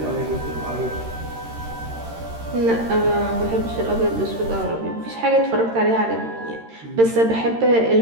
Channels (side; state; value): left; late; 13 ms